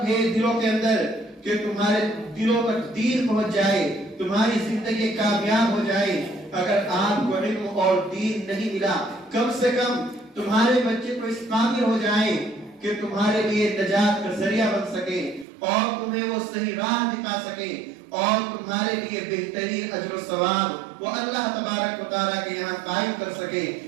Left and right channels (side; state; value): left; drops out; at 15.5 s